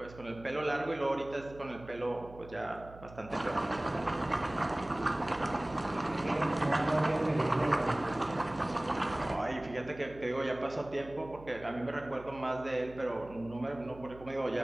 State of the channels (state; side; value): noise; right; hum, 18 dB below the sound